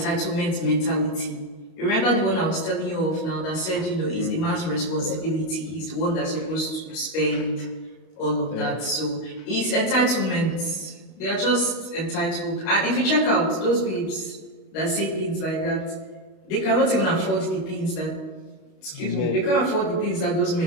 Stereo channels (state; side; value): late; right; 32 ms